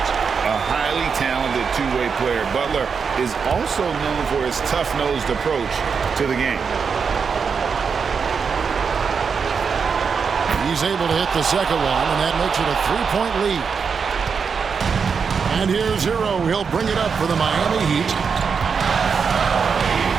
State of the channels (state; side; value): quieter; left; 5.9 dB